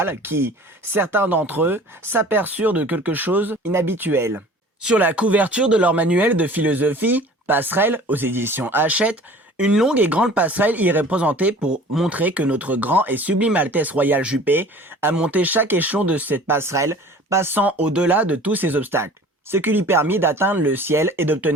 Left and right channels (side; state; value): both; normal; correlation 0.45